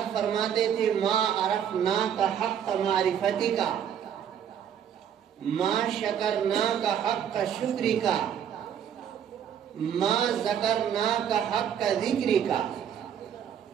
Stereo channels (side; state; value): left; quieter; 8.8 dB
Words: فرماتے تھے، ما عرفناک حق معرفتک، ما شکرناک حق شکرک، ما ذکرناک حق ذکرک،